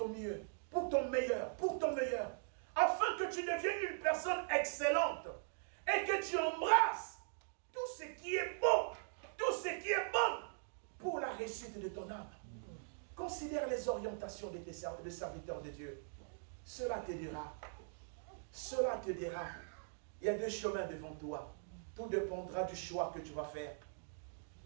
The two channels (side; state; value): left; silent; digital silence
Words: mieux, pour ton meilleur, afin que tu deviennes une personne excellente et que tu embrasses tout ce qui est beau, tout ce qui est bon pour la réussite de ton âme. Considère les orientations de tes serviteurs de Dieu. Cela te dira. Cela te dira. Il y a deux chemins devant toi. Tout dépendra du choix que tu vas faire.